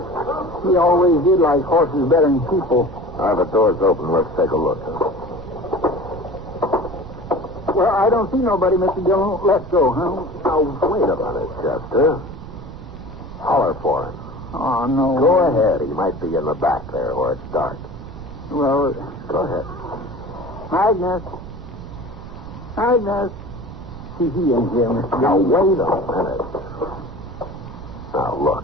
He always did like horses better than people. All right, the door's open. Let's take a look. Huh? Well, I don't see nobody, Mr. Dillon. Let's go, huh? Now, wait a minute, Chester. Holler for him. Oh, no. Go ahead. He might be in the back there where it's dark. Well, Go ahead. Magnus. See, he ain't here, Mr. Now, Dillon. wait a minute. Now,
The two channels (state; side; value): noise; right; rumble, 12 dB below the sound